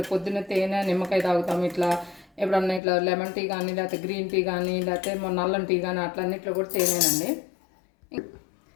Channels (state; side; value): drops out; right; at 2.8 s